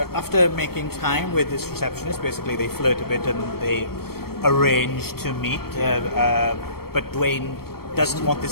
after making time with this receptionist, basically they flirt a bit and they arrange to meet. But Dwayne doesn't want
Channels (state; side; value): late; right; 0.94 ms